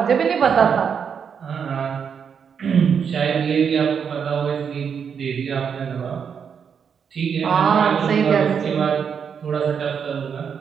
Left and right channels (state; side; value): quieter; left; 7.0 dB